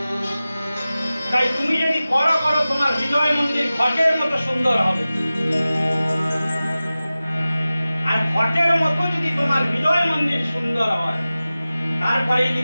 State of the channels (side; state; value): both; inverted; correlation -0.96